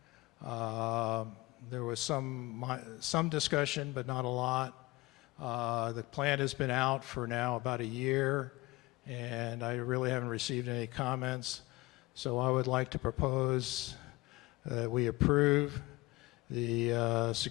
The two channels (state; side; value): quieter; right; 21.7 dB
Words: There was some discussion, but not a lot. The plan has been out for now about a year, and I really haven't received any comments. So I would like to propose that we approve the